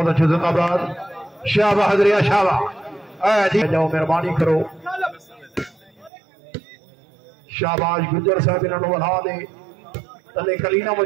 अच्छे जिंदाबाद। शाबा हजरिया शाबा, जी जाओ मेहरबानी करो। शाबाश गुजर साहब इन्होंने बढ़ा दे, तले कलीना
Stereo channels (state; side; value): drops out; left; at 6.1 s